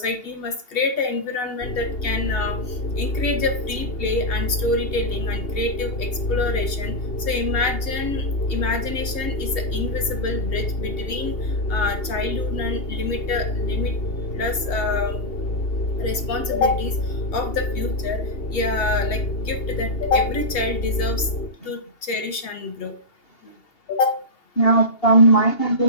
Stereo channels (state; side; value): late; right; 2.8 ms